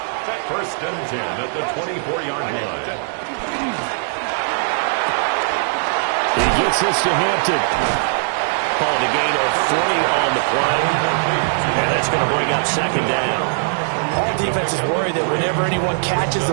First and 10 at the 24-yard line. He gets this to Hampton. Called a gain of 3 on the play. And that's going to bring up second down. All defenses worry that whenever anyone catches the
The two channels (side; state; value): left; silent; digital silence